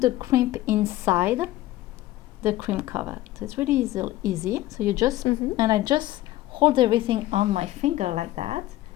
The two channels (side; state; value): right; quieter; 15.8 dB